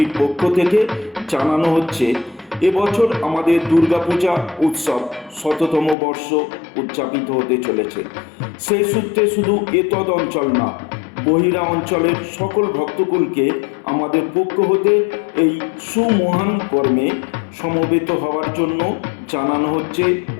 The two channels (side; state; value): right; drops out; at 6.0 s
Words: পক্ষ থেকে জানানো হচ্ছে, এবছর আমাদের দুর্গাপূজা উৎসব ১০০তম বর্ষ উদযাপিত হতে চলেছে। সেই সূত্রে শুধু এতদ অঞ্চল না, বহিরা অঞ্চলের সকল ভক্তকুলকে আমাদের পক্ষ হতে এই সুমহান কর্মে সমবেত হওয়ার জন্য জানানো হচ্ছে